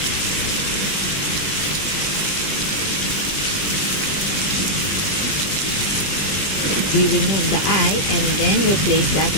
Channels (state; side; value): late; right; 20 ms